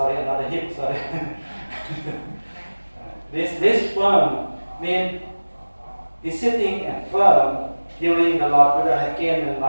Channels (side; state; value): both; inverted; correlation -1.00